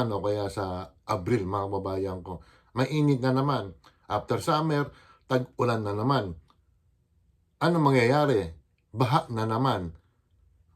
o kaya sa Abril mga kababayan ko. Mainit na naman. After summer, tag-ulan na naman. Ano mangyayari? Baha na naman.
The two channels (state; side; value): identical; both; correlation 1.00